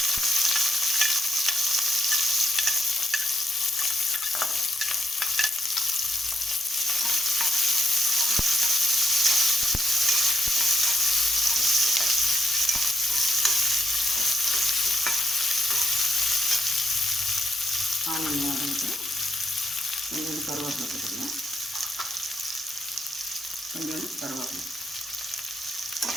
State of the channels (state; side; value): normal; both; correlation 0.79